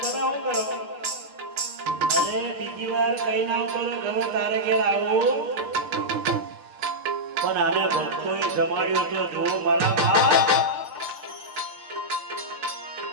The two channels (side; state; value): left; late; 7.0 ms